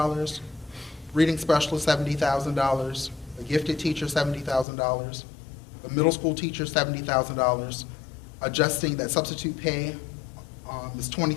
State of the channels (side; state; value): right; drops out; at 4.7 s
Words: Reading specialist, $70,000. A gifted teacher, $70,000. A middle school teacher, $70,000. Adjusting that substitute pay is